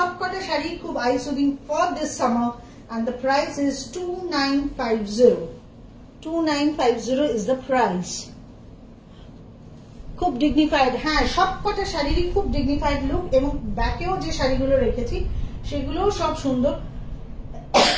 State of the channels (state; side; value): identical; both; correlation 1.00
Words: শাড়ি খুব eye soothing for this summer, and the price is 2950. 2950 is the price. খুব ডিগনিফাইড, হ্যাঁ সবকটা শাড়িরই খুব ডিগনিফাইড লুক, এবং ব্যাকেও যে শাড়িগুলো রেখেছি সেগুলোও সব সুন্দর।